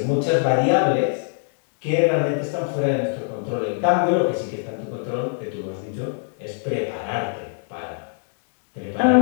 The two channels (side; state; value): right; silent; digital silence